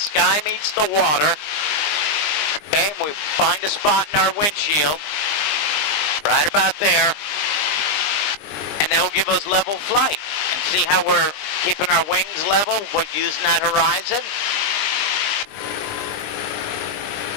meets the water. Okay, and we find a spot in our windshield, right about there. And that will give us level flight. And see how we're keeping our wings level? We're using that horizon.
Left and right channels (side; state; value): right; late; 20 ms